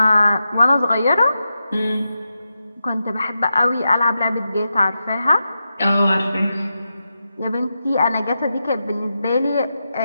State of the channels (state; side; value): inverted; both; correlation -0.89